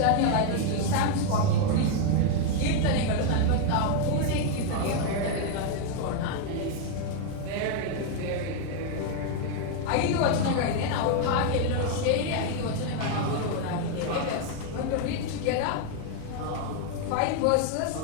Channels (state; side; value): different; both; correlation 0.00